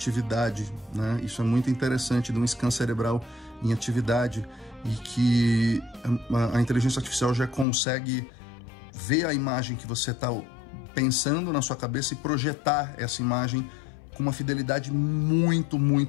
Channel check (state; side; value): drops out; right; at 7.7 s